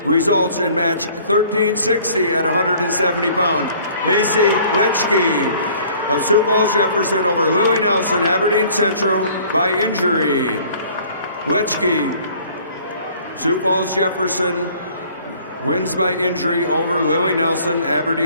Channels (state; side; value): inverted; both; correlation -0.54